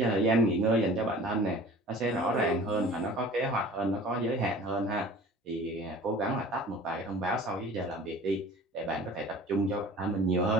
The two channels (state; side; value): normal; both; correlation 0.44